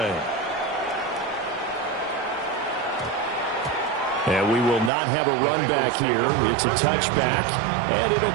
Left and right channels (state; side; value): drops out; left; at 4.9 s